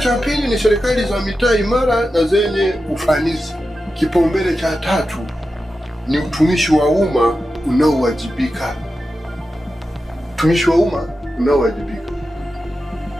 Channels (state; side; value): normal; both; correlation 0.91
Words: pili ni serikali za mitaa imara na zenye ufanisi. Kipaumbele cha tatu ni utumishi wa umma unaowajibika. Utumishi wa umma unaowajibika.